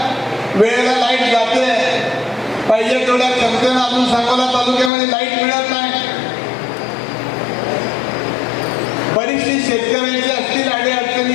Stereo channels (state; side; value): drops out; right; at 4.9 s